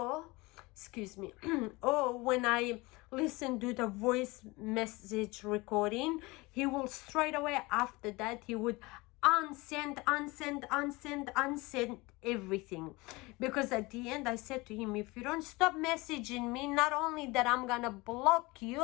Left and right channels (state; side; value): quieter; right; 23.3 dB